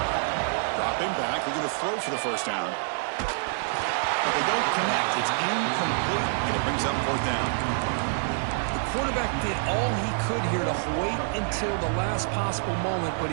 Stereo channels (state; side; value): silent; left; digital silence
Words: Dropping back. They're going to throw for the first down. But they don't connect. It's incomplete, and it brings up 4th down. The quarterback did all he could here to wait until the last possible moment, but